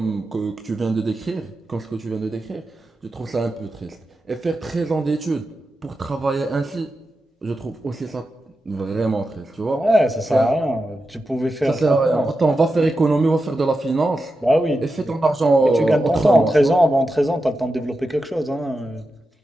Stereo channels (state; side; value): normal; both; correlation 0.90